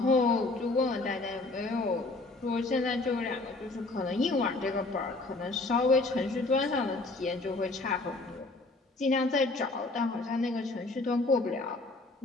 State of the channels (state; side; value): quieter; right; 3.2 dB